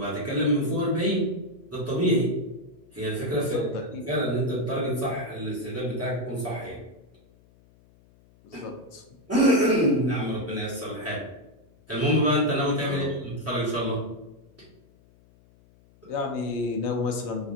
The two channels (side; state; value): left; noise; hum, 29 dB below the sound